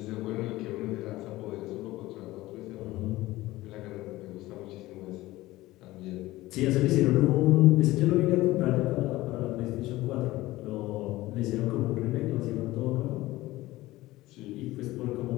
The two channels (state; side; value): quieter; right; 17.9 dB